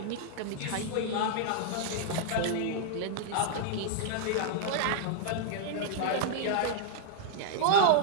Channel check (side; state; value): both; different; correlation -0.01